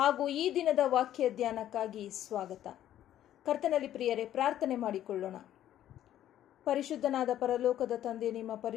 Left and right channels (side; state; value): right; quieter; 11.9 dB